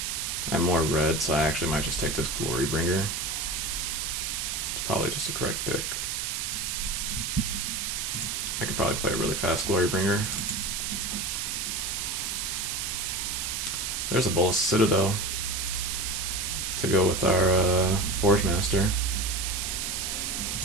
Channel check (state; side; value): noise; right; hiss, 2 dB below the sound